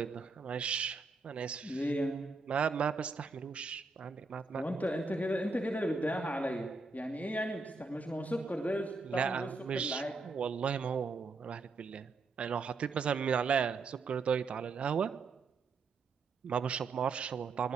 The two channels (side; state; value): left; quieter; 4.0 dB